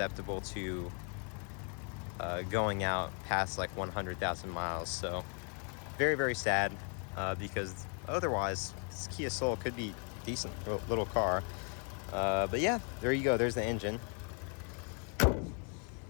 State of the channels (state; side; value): quieter; right; 39.5 dB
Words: to going out past like 100,000 miles. So very, very sad, because otherwise this Kia Soul could be a decent little car. But yeah, there you go. There's the engine.